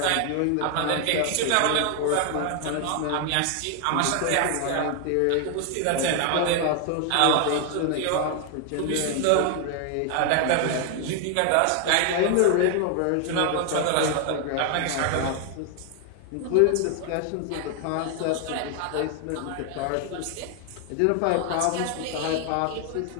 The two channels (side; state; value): both; different; correlation 0.00